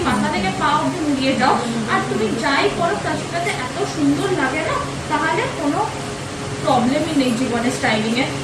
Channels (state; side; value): identical; both; correlation 1.00